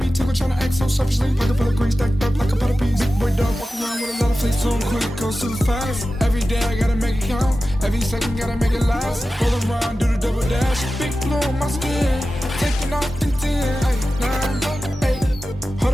tickle trying to act so selfishly. Pocket full of green stacked up like a pot of peas. Big boy dog walk around with a lot of face on quick, go super fast. Every day I gotta make it count. Every second gotta make it last. Roll around, do the double dash. Big blue on my skin. Taking off the 10. Ay, 9, 8. Hold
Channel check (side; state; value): both; normal; correlation 0.94